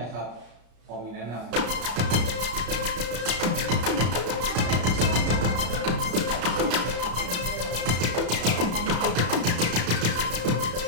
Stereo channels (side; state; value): left; late; 34 ms